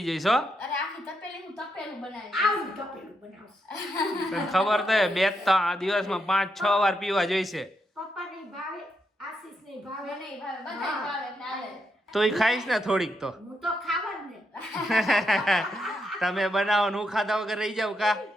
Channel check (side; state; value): both; normal; correlation 0.81